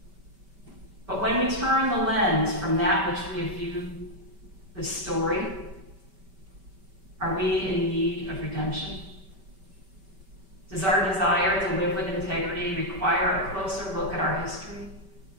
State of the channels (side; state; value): left; late; 5.2 ms